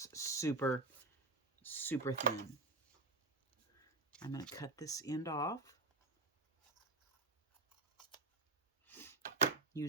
super, super thin. I'm going to cut this end off.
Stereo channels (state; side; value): quieter; left; 3.0 dB